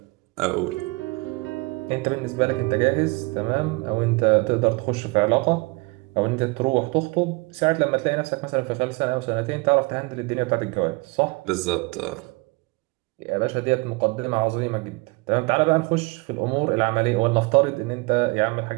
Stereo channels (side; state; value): left; quieter; 26.4 dB